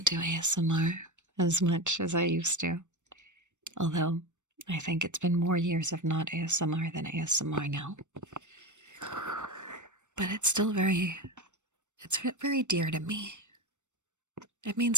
do ASMR as much as I used to. Although, I think it's been more years of not ASMR than ASMR now. But it's still very dear to me. It means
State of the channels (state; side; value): late; left; 0.84 ms